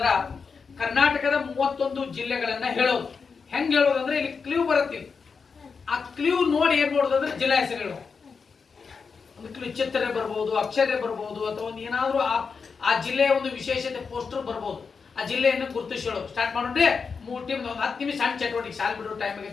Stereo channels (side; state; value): right; quieter; 5.4 dB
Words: ಕರ್ನಾಟಕದ 31 ಜಿಲ್ಲೆಗಳನ್ನ ಹೇಳೋದು. ಹೆಂಗ್ ಹೇಳೋದಂದ್ರೆ ಇಲ್ಲಿ ಕ್ಲೂ ಬರುತ್ತೆ. ಆ ಕ್ಲೂ ನೋಡಿ ಏನ್ ಮಾಡೋದಂದ್ರೆ ಜಿಲ್ಲಾ ಹೆಸರುಗಳು. ಒಂದು ಕ್ಲೂ ಚಿತ್ರ ಬರ್ಬೋದು, ಅಕ್ಷರ ಬರ್ಬೋದು, ಅಥವಾ ಒಂದು ಏನಾದ್ರೂ ಆ ಜಿಲ್ಲೆಯ ಒಂದು ವಿಶೇಷತೆ ಪೋಸ್ಟರ್ ಬರ್ಬೋದು. ಆ ಜಿಲ್ಲೆಯನ್ನು ಗುರುತಿಸಿ ಹೇಳೋದು. ಸ್ಟಾರ್ಟ್ ಮಾಡೋಣ್ರಿ. 3 ಟೀಮ್ ಒಂದು 10 ನಿಮಿಷ ಸಣ್ಣ ಚಟುವಟಿಕೆ. ಶಾಲೆ ಬಿಡೋ ಟೈಮ್